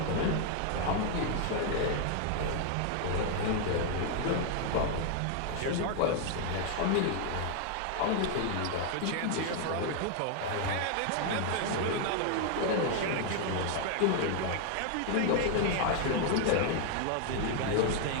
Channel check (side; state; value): both; different; correlation 0.00